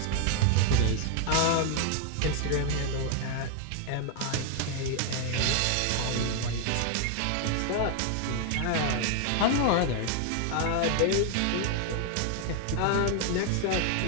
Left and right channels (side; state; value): both; different; correlation 0.00